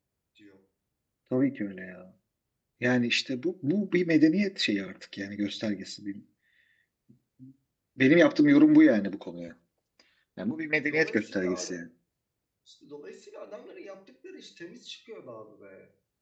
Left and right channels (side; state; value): both; identical; correlation 1.00